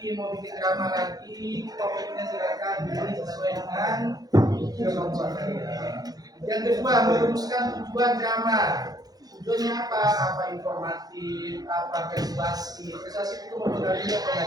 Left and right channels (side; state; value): left; late; 0.19 ms